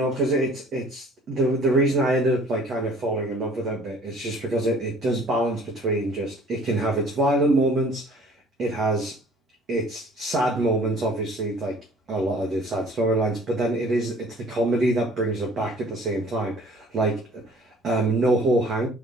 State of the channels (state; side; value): normal; both; correlation 0.52